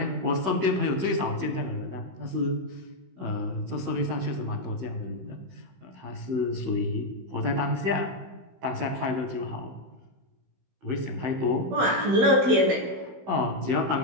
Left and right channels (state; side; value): late; left; 16 ms